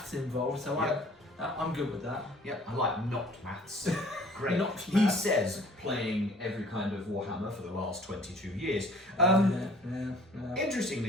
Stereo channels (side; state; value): both; normal; correlation 0.53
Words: involved. So Yep. I'm good with that. Yep, I like not maths. Great. Not He maths. says, playing every kind of Warhammer for the last 22 years. Yeah.